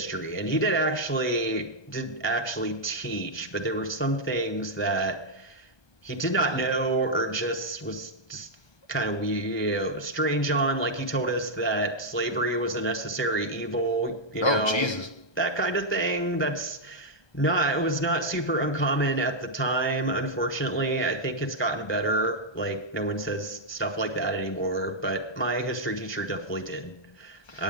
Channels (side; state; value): right; late; 1.2 ms